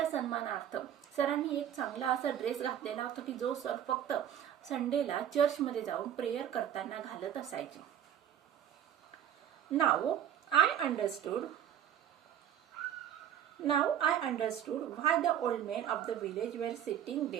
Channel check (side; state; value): left; quieter; 10.0 dB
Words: सन्मानार्थ सरांनी एक चांगला असा ड्रेस घातलेला होता की जो सर फक्त संडेला चर्चमध्ये जाऊन प्रेयर करताना घालत असायचे. Now I understood why the old men of the village were sitting